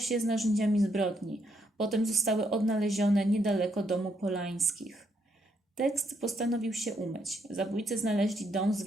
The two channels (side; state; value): both; normal; correlation 0.75